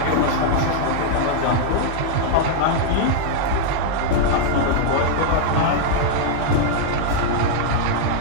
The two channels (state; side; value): different; both; correlation -0.01